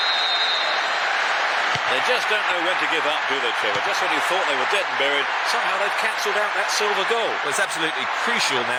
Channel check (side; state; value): both; identical; correlation 1.00